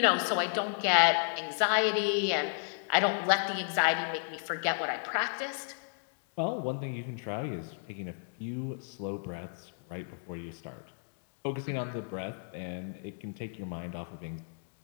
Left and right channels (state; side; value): silent; right; digital silence